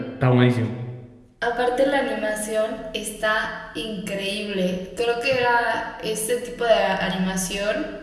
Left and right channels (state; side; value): identical; both; correlation 1.00